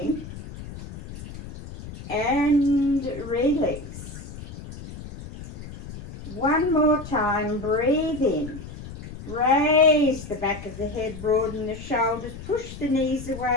And release. One more time, breathe in. Raise the back of the head, broaden the shoulders, push the knees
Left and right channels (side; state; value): left; noise; rumble, 13 dB below the sound